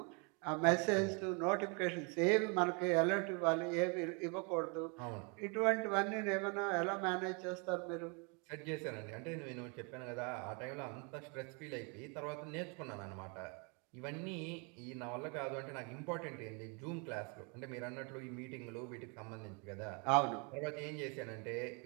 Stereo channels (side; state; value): left; quieter; 33.9 dB